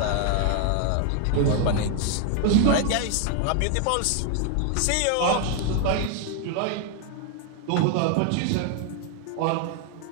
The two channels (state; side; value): different; both; correlation 0.00